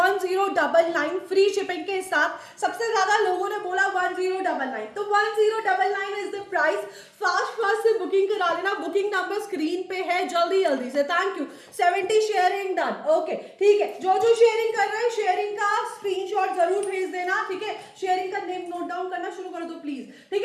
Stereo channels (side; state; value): both; identical; correlation 1.00